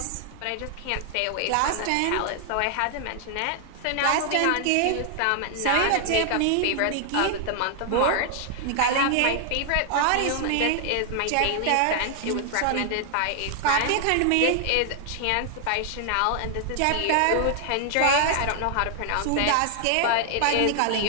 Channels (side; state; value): both; different; correlation 0.00